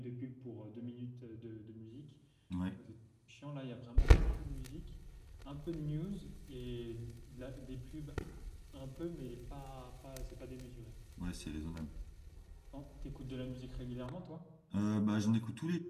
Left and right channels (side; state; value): both; identical; correlation 1.00